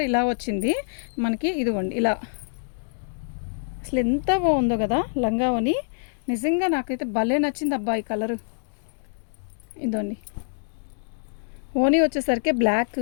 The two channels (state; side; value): silent; right; digital silence